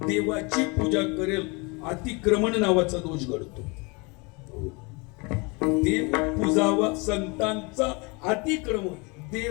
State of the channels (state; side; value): quieter; right; 28.9 dB